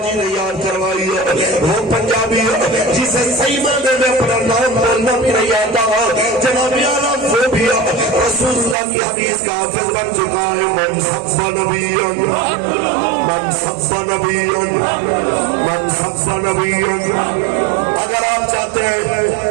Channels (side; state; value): left; drops out; at 8.8 s